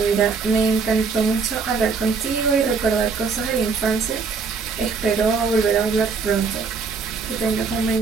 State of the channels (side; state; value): left; quieter; 5.0 dB